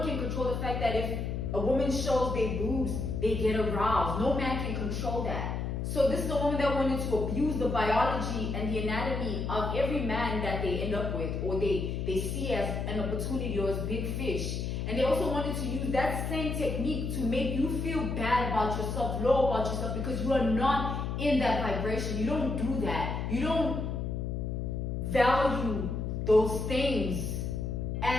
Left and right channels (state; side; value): noise; left; hum, 2 dB below the sound